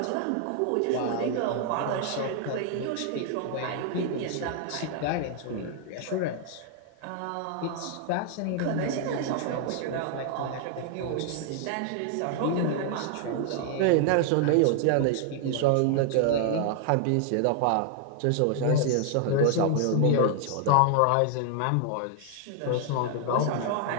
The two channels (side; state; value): both; different; correlation 0.00